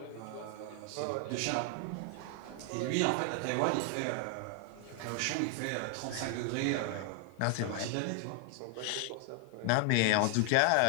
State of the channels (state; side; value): different; both; correlation 0.00